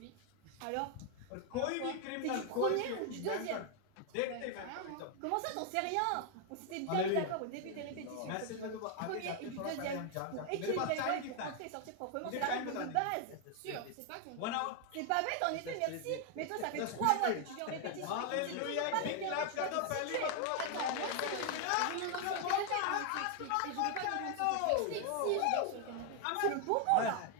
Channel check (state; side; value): different; both; correlation 0.00